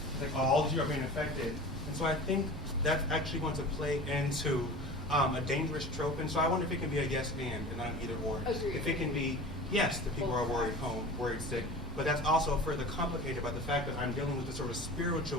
like all of you are being affected. And so I think that's actually going to play into a dangerous trope. And so I wonder if it can be a yes and not an either or. Agreed. If it can be, yes, the people are worried home, worried sick, but that's also further complicated by the fact that I'm dealing with the sort of spiritual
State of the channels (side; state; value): both; normal; correlation 0.36